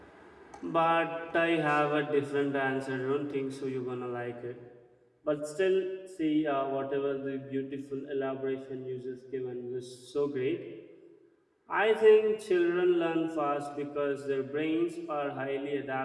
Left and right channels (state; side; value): identical; both; correlation 1.00